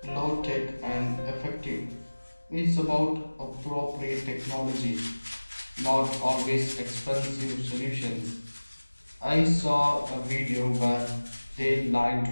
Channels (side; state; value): both; inverted; correlation -1.00